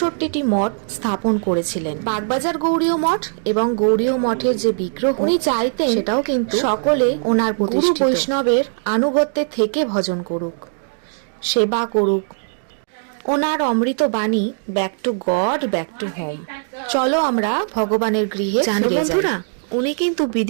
মঠ স্থাপন করেছিলেন। বাগবাজার গৌড়ীয় মঠ এবং গৌড়ীয় মঠের যে বিগ্রহ উনি চাইতেন সেটাও কিন্তু সকলে ওনার প্রতিষ্ঠিত বৈষ্ণবের আনুগত্যে থেকে ভজন করুক, সেবা করুক। ওনার অমৃত বাণী back to god, back to home. চলো আমরা ভগবানের গৃহে জানো বন্ধুরা, উনি কিন্তু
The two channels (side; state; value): left; silent; digital silence